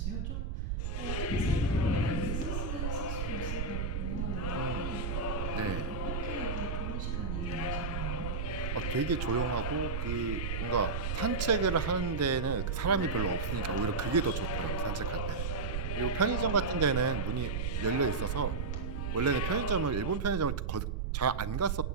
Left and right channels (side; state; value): right; noise; rumble, 2 dB below the sound